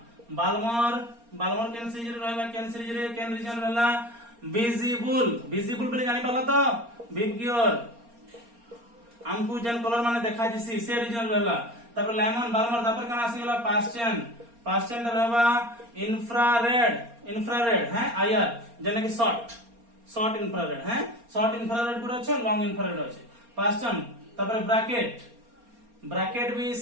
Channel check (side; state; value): left; late; 4.3 ms